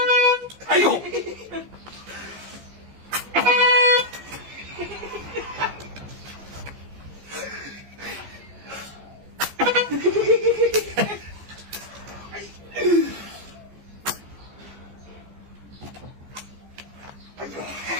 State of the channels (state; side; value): late; left; 15 ms